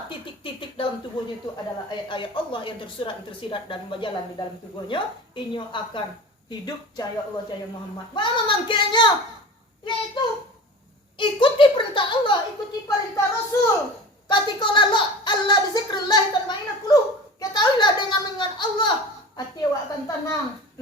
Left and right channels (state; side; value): normal; both; correlation 0.36